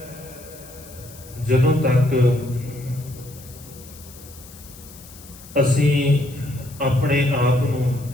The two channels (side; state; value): left; noise; hiss, 19 dB below the sound